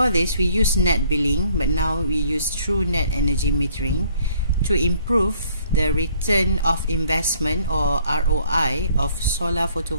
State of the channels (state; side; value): inverted; both; correlation -0.62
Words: this, we use net billing, but now we use true net energy metering to improve the return of investment, or ROI, of solar